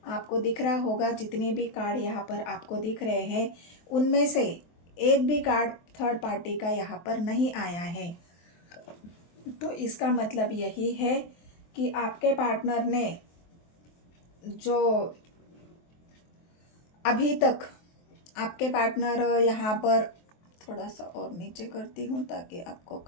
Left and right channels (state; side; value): late; right; 23 ms